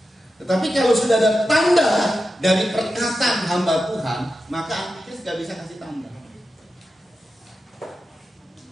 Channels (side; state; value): both; normal; correlation 0.91